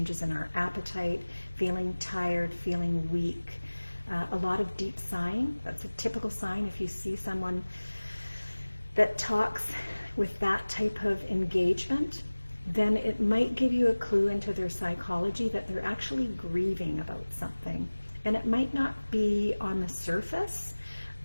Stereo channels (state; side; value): inverted; both; correlation -1.00